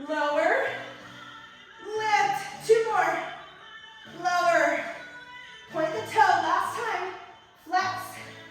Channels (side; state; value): both; identical; correlation 1.00